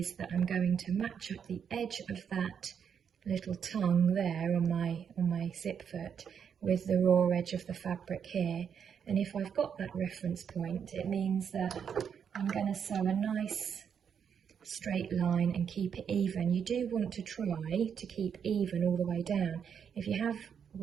that I'm going to match up the edge of that little tongue there on my zip foot with the raw edge of the fabric here. And if I've got that reference point, it means that I'm going to sew a nice straight line and keep it even. You do want to try to keep even all the way down. If you have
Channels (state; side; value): quieter; left; 7.5 dB